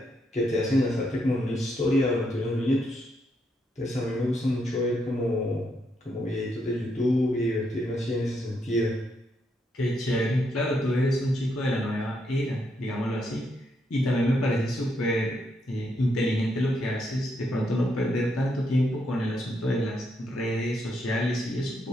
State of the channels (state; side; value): normal; both; correlation 0.78